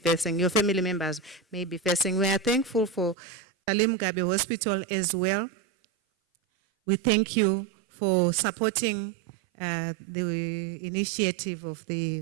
your family members may be facing. We are thankful for Salim Gabe Hospital as well. We thank you for supporting the initiative of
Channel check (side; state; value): left; drops out; at 3.2 s